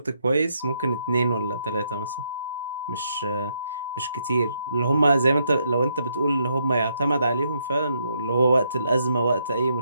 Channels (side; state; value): both; inverted; correlation -0.75